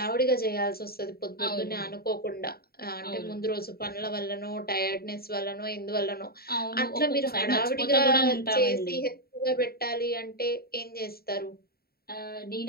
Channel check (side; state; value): right; late; 0.45 ms